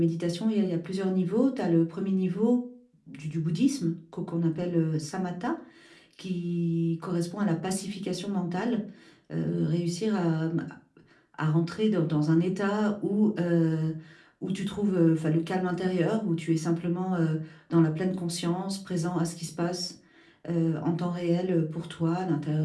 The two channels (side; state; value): both; identical; correlation 1.00